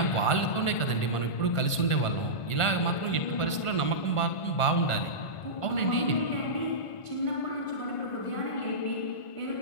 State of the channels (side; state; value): right; late; 1.5 ms